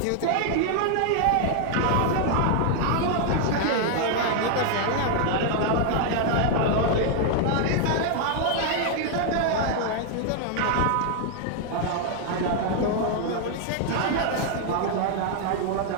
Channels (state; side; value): different; both; correlation 0.00